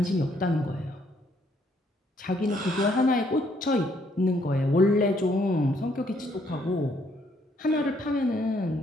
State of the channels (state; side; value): normal; both; correlation 0.69